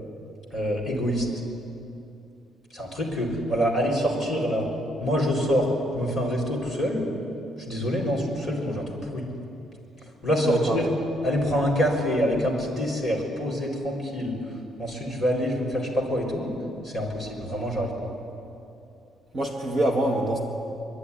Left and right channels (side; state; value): both; normal; correlation 0.71